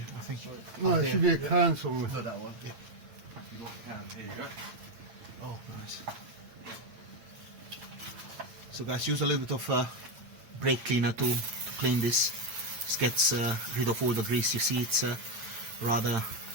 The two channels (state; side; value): late; left; 8.9 ms